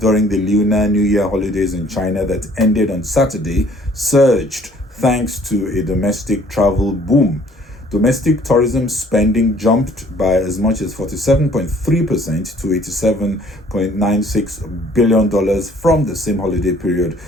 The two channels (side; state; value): both; normal; correlation 0.57